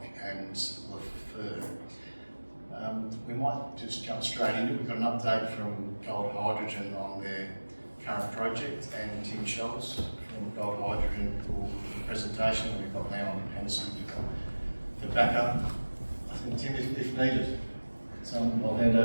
and Lafleur. We might just jump straight into it. We've got an update from Gold Hydrogen on their current project, and Tim Schultz from Gold Hydrogen for the presentation. We've got now on Henderson for backup. I think Tim, if needed. So I'll hand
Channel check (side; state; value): both; inverted; correlation -1.00